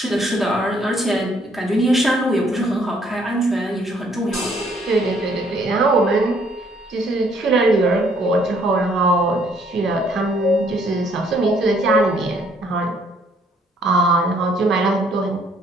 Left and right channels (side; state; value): both; normal; correlation 0.65